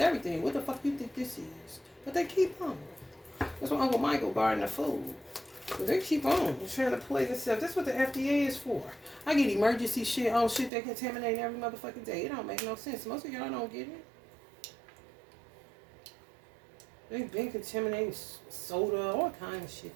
What the fuck you think this is? But they keep on. That's why Uncle Michael guarding the food. But they keep on trying to play this stuff. That's what the FDA is for. I get emergency shit on shit they contaminate every motherfucking day. It don't make no sense. Most of y'all don't get it. They've been contaminating soda, all kind of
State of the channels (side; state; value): left; drops out; at 10.7 s